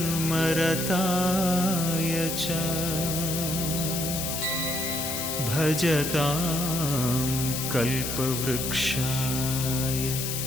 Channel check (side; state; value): left; noise; hiss, 3 dB below the sound